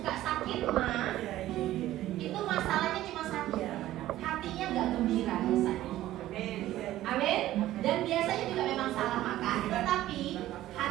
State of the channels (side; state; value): left; quieter; 14.5 dB